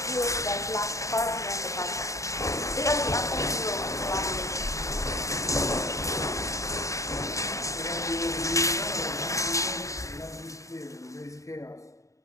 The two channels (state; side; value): late; right; 0.15 ms